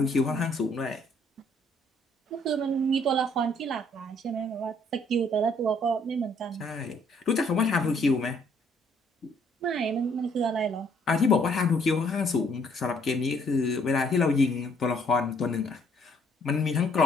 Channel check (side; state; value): both; normal; correlation 0.65